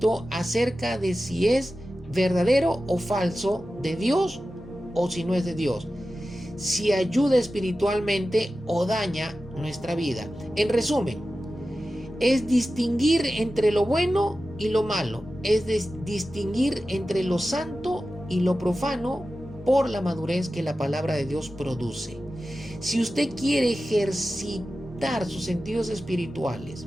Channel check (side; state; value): both; normal; correlation 0.94